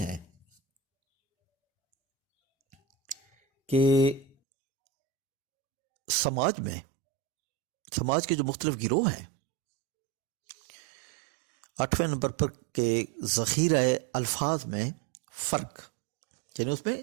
کہ سماج کے جو مختلف گروہ ہیں، 8ویں نمبر پر کے ذخیرہ الفاظ میں فرق، یعنی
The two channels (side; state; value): left; drops out; at 4.4 s